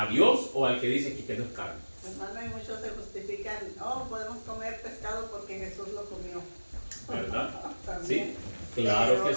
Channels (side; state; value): both; inverted; correlation -1.00